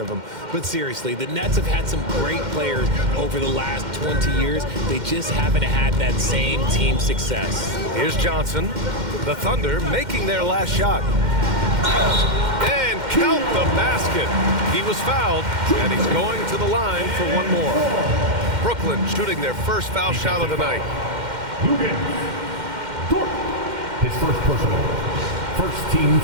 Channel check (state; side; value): late; left; 2.1 ms